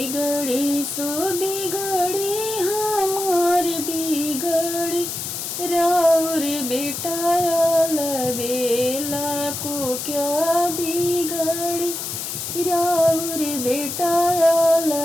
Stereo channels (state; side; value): noise; left; hiss, 5 dB below the sound